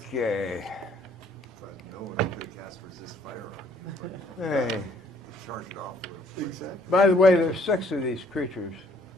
No one could cast resist fire on you. Hey. Charge it off. Exactly. By the way, there's 6 of these creatures.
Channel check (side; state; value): both; normal; correlation 0.63